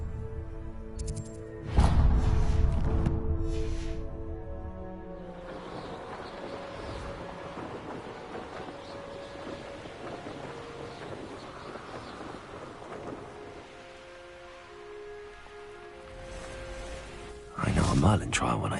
I know a Merlin trial when I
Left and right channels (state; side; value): identical; both; correlation 1.00